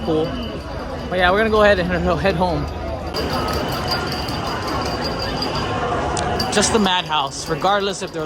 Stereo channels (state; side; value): identical; both; correlation 1.00